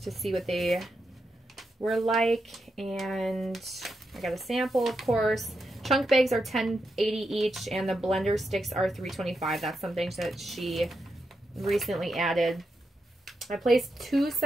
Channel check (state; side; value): normal; both; correlation 0.85